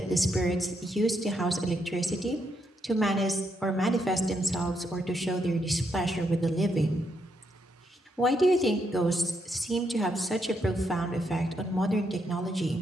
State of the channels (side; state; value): both; normal; correlation 0.79